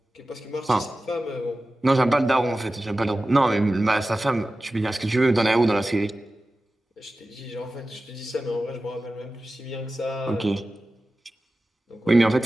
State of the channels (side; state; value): both; normal; correlation 0.95